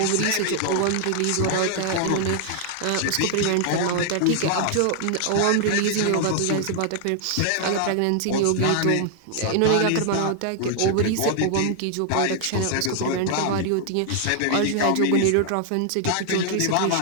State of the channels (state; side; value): different; both; correlation 0.00